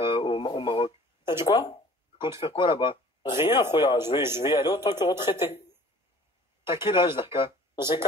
au Maroc? T'as dit quoi? Tu comptes faire quoi là-bas? Rien, Khouya. Je vais y aller autant que retraité. T'as quel âge, Darka? J'ai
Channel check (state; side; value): normal; both; correlation 0.49